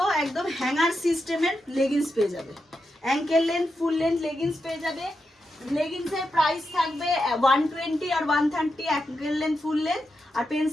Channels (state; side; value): normal; both; correlation 0.87